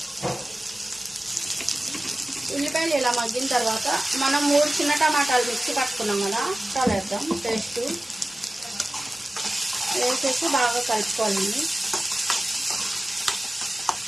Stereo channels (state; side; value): normal; both; correlation 0.96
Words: ఉల్లిపాయలు ఇలా మగ్గిన తర్వాత మనం 3 చిన్న టమాటాలు మిక్సీ పట్టుకున్నాం కదా, చాలా వేద్దాం. పేస్ట్ వేసేసి బాగా కలుపుకోవాలండి.